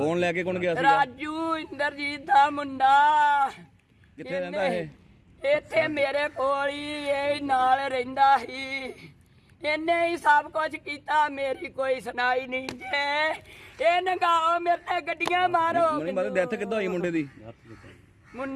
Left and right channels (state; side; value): identical; both; correlation 1.00